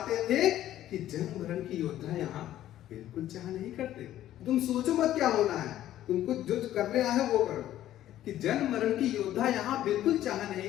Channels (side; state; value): right; quieter; 12.9 dB